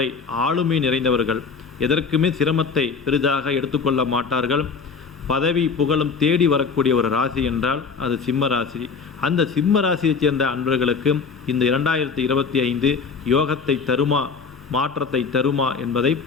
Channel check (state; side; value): quieter; right; 5.3 dB